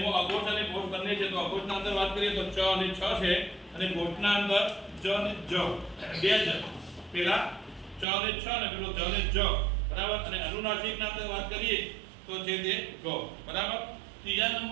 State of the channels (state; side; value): drops out; left; at 8.1 s